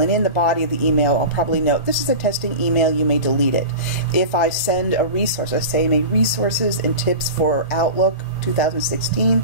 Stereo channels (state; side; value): inverted; both; correlation -0.31